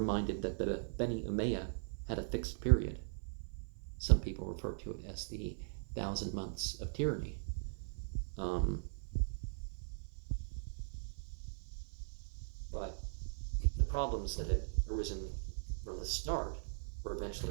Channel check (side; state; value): left; silent; 51 dB below the other